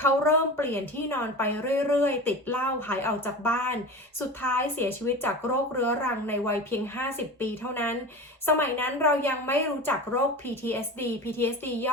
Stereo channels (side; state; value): both; normal; correlation 0.31